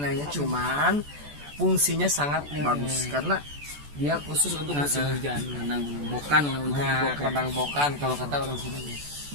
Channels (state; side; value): late; left; 14 ms